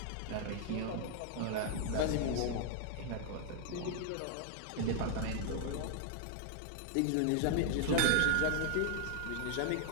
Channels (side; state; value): both; different; correlation 0.00